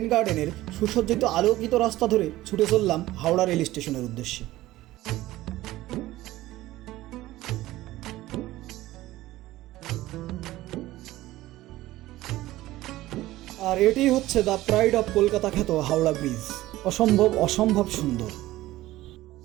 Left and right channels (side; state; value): left; quieter; 16.5 dB